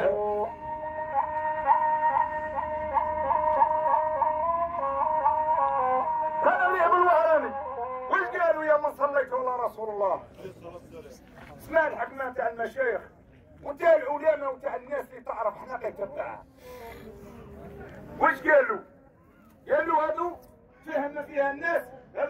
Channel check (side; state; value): both; identical; correlation 1.00